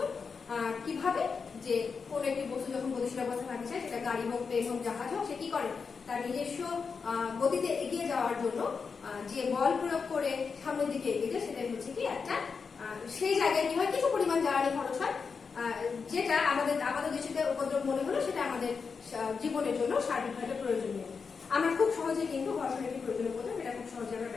কিভাবে, যে কোন একটি বস্তু যখন গতিশীল অবস্থায় থাকতে চায়, সেটা গাড়ি হোক, প্লেন হোক, জাহাজ হোক, সে কি করে, তার নিজস্ব গতিতে এগিয়ে যাওয়ার জন্য যে বল প্রয়োগ করে সামনের দিকে এগিয়ে যায়, সেটাই হচ্ছে কি একটা, সেই জায়গায় কি হয়, কিছু পরিমাণ জ্বালানি খরচ হয়, যেটা আমাদের দৃষ্টিতে উপদ্রব মনে হলো, সেটা আমাদের জীবনের জন্য সার্বিকভাবে প্রয়োজনীয়। আমরা খুব সহজে কিন্তু ঘর্ষণ একটি প্রয়োজনীয় উপদ্রব, এটা খুব সহজে আমরা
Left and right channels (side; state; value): right; quieter; 5.4 dB